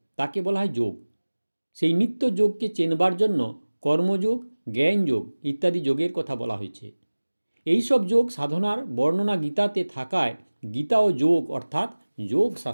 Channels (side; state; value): both; inverted; correlation -1.00